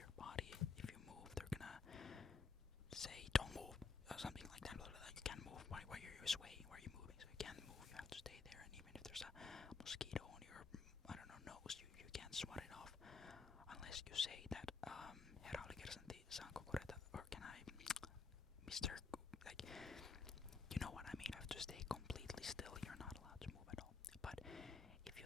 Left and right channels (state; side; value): quieter; right; 4.8 dB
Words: body. If you move, they're gonna say don't move or something like that. You can't move. Why are you swaying? Why are you moving? So you can't move. You have to stay there. And even if there's a mosquito on your nose, you can't swat it off unless you say that herra oli kersantti, saanko korjata, or can I, Mr. Like, you know what I mean. You have to stay completely still. You're not allowed to move at all. But if you